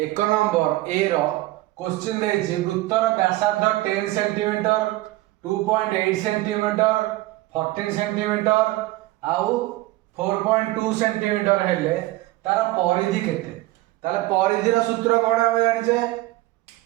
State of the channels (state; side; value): quieter; left; 18.3 dB